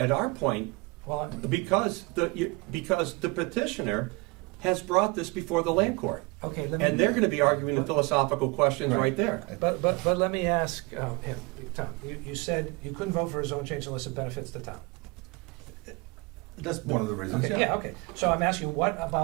our point Well, because the petitioner has brought this before the land court. okay, let me. And they're going to be arguing the philosophical questions right there. But let me ask, Tom, you said you couldn't vote for a zone change unless it benefits the town. That's one of the reasons, Okay, yeah. yeah, okay. So I'm asking, you, what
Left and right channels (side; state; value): left; quieter; 26.9 dB